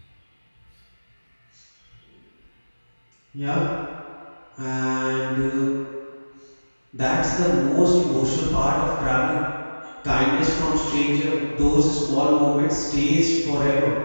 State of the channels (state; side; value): inverted; both; correlation -1.00